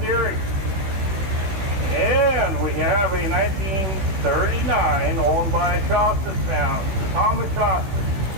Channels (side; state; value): left; late; 16 ms